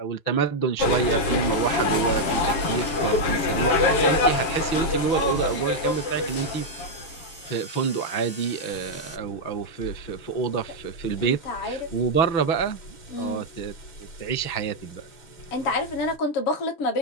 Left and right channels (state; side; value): late; right; 6.6 ms